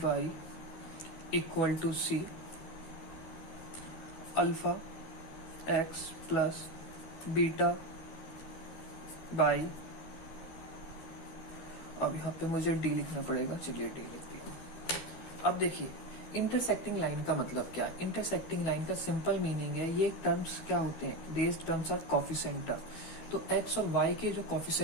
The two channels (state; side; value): late; right; 13 ms